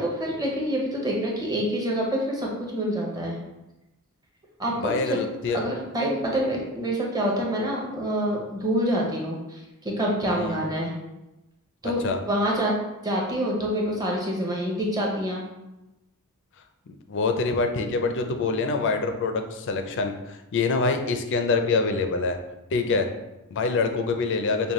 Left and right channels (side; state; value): both; normal; correlation 0.19